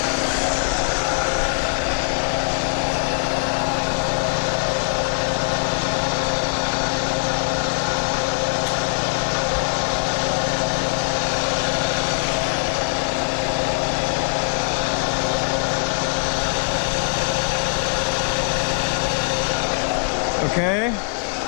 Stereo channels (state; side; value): silent; right; digital silence